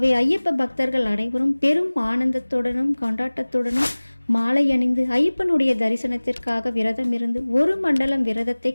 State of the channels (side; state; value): both; inverted; correlation -1.00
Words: ஐயப்ப பக்தர்கள் அனைவரும் பெரும் ஆனந்தத்துடனும் கொண்டாட்டத்துடனும் மாலை அணிந்து ஐயப்பனுடைய தரிசனத்திற்காக விரதம் இருந்து ஒரு மண்டலம் விரதத்தை